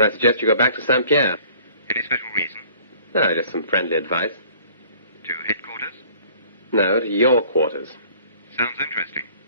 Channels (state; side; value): inverted; both; correlation -0.53